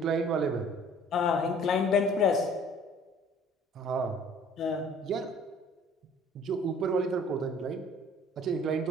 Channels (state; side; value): normal; both; correlation 0.52